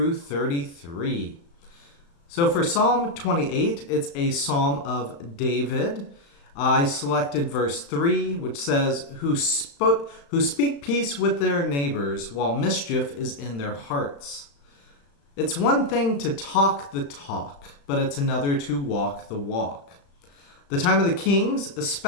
33. So for Psalm 28, it's a psalm of David. I selected verse 3, which says, who speak peace with their neighbors while mischief is in their hearts. It's one thing to talk the talk, but it's another to walk the walk. The time of the kings,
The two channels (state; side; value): late; right; 35 ms